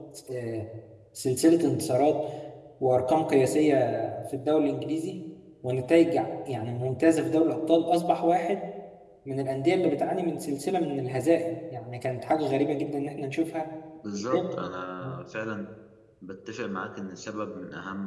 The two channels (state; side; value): identical; both; correlation 1.00